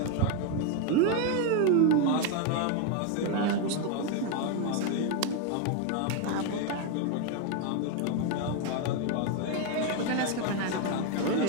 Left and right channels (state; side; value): different; both; correlation 0.01